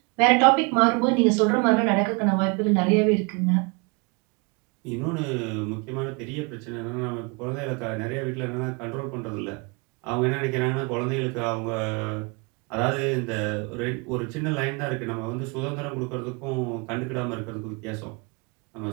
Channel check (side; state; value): left; quieter; 30.9 dB